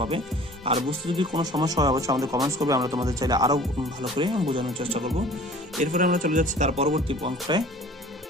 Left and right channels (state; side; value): normal; both; correlation 0.47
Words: আর বুঝতে যদি কোনো সমস্যা হয় অবশ্যই আমাদের কমেন্টস করবে, আমরা তোমাদের চাইলে আরো ভালো করে বোঝানোর চেষ্টা করব। এরপরে আমরা চলে যাচ্ছি তার পরবর্তী অঙ্কটায়।